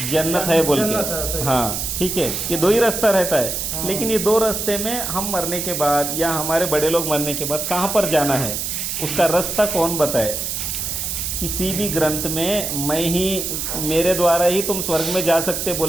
जन्नत है बोल के। हाँ ठीक है, ये 2 ही रास्ता रहता है। लेकिन ये 2 रास्ते में हम मरने के बाद या हमारे बड़े लोग मरने के बाद कहाँ पर जाना है, उसका रास्ता कौन बताए? किसी भी ग्रंथ में मैं ही, मेरे द्वारा ही तुम स्वर्ग में जा सकते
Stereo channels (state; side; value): noise; right; hiss, 3 dB below the sound